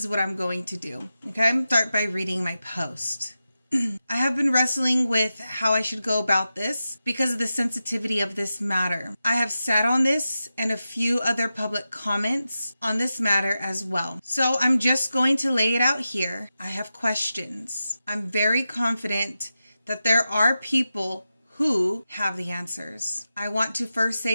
what I'm going to do. Okay, start by reading my post. I have been wrestling with how I should go about this because of the sensitivity of this matter. I have sat on this and a few other public comments on this matter as well. So I'm just going to lay it out here. I have questions. I'm very confident that there are people who have the answers. I want to first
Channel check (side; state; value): both; inverted; correlation -0.91